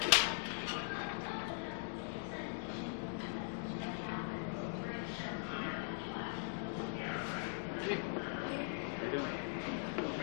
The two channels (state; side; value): silent; right; digital silence